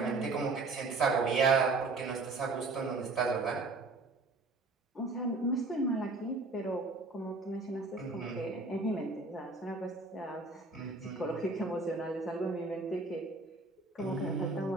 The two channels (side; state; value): left; quieter; 3.6 dB